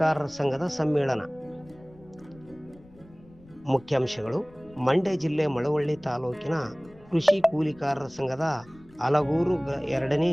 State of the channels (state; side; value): noise; left; rumble, 25 dB below the sound